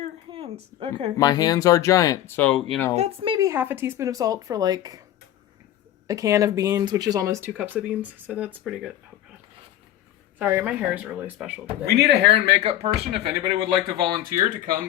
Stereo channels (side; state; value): right; quieter; 12.6 dB